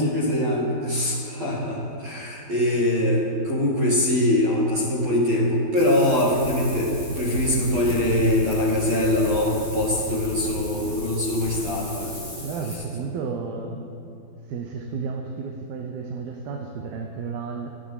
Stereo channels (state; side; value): late; left; 12 ms